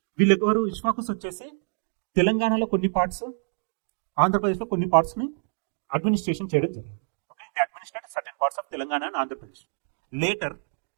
వీళ్ళు ఎవరు? ఇష్వాకుస్ వచ్చేసి తెలంగాణలో కొన్ని పార్ట్స్, ఆంధ్రప్రదేశ్లో కొన్ని పార్ట్స్ని అడ్మినిస్ట్రేషన్ చేయడం జరిగింది. Okay, they administrated certain parts of Telangana and Andhra Pradesh. Later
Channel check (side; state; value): left; silent; digital silence